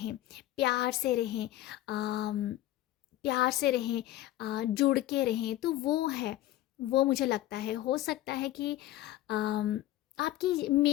प्यार से रहें, प्यार से रहें, जुड़ के रहें। तो वो है, वो मुझे लगता है हो सकता है कि आपकी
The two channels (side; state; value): right; quieter; 14.7 dB